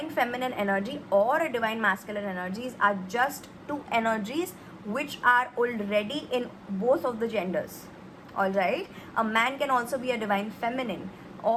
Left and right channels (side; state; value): both; identical; correlation 1.00